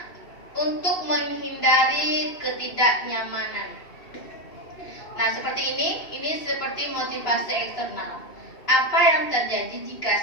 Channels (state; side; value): late; right; 2.7 ms